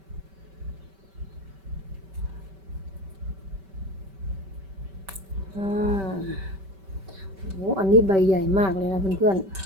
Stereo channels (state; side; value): late; left; 5.2 ms